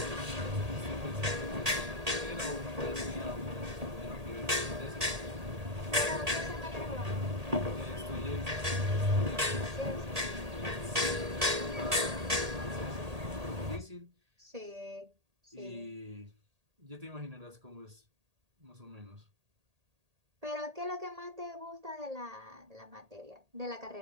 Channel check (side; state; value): left; late; 1.8 ms